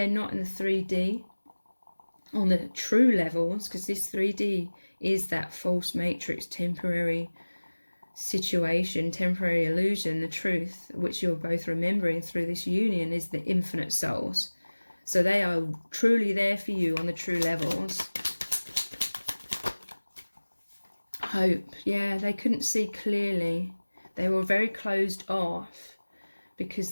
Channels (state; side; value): inverted; both; correlation -1.00